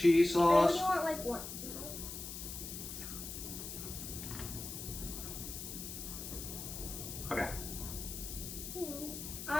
I sauce. only want like one. Okay, I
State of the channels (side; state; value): left; noise; hiss, 8 dB below the sound